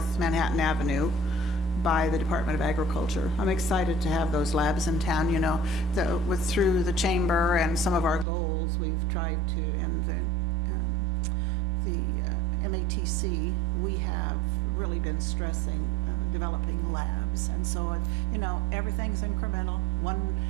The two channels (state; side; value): drops out; left; at 8.2 s